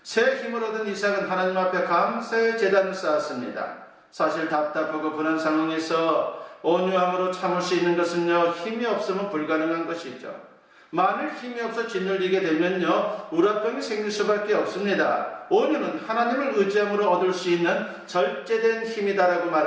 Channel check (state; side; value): identical; both; correlation 1.00